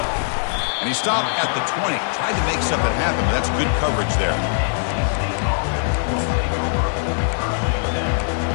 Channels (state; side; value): silent; right; 65 dB below the other